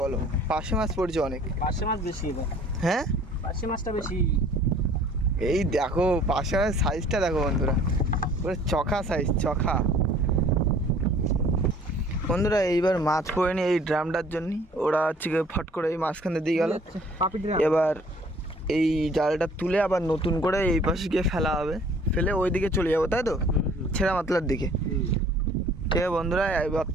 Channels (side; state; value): both; normal; correlation 0.54